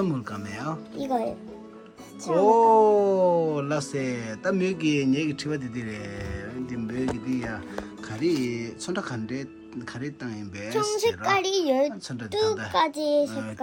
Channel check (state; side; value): identical; both; correlation 1.00